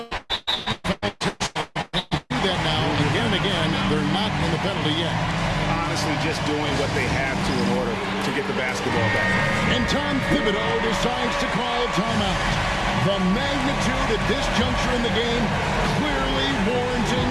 That now, again and again, they're not in the penalty yet. Honestly, just doing what they have to in order to get the basketball back. And Tom Thibodeau decides to call timeout. The magnitude at this juncture in the game clearly warranting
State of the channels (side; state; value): both; identical; correlation 1.00